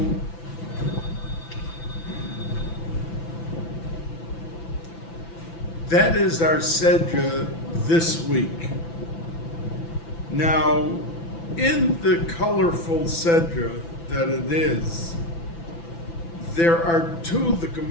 that is our sedra this week. Now, in the colorful sedra that it is, there are two, the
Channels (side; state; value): right; late; 5.9 ms